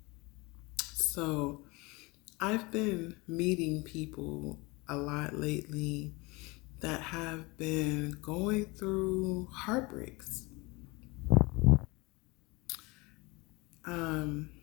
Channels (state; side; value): quieter; right; 25.0 dB